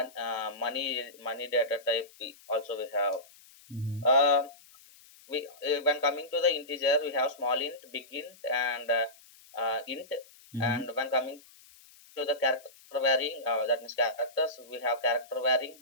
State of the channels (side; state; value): left; noise; hiss, 24 dB below the sound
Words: money data type. Also we have. Mm-hmm. Uh, we When coming to the integer, we have small int, big int, and int. Mm-hmm. And when coming to the character varying, that means characters, we have character varying,